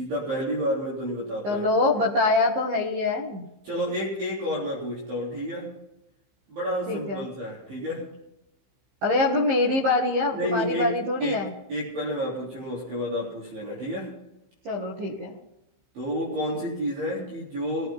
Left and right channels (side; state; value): left; late; 15 ms